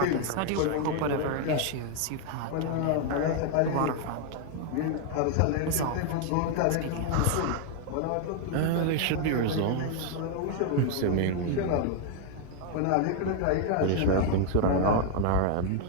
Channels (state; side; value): different; both; correlation 0.00